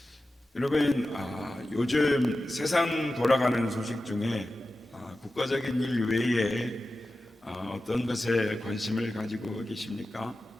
여러분, 요즘 세상 돌아가는 소식 중에 국가적인 일 외에 어떤 것에 관심을 가지고 계십니까?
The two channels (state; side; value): normal; both; correlation 0.94